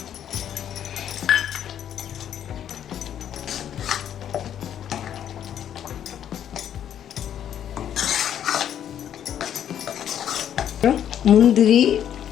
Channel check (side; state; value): right; quieter; 9.9 dB